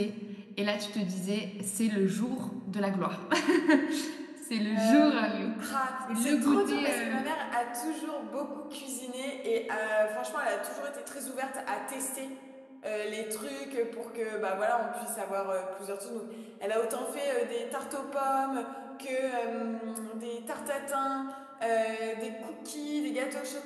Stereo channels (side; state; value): both; identical; correlation 1.00